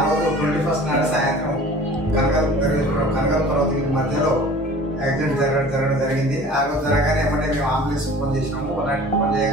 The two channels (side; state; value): both; normal; correlation 0.45